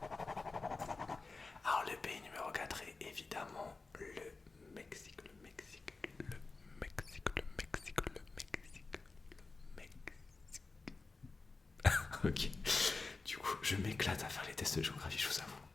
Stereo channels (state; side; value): quieter; right; 3.8 dB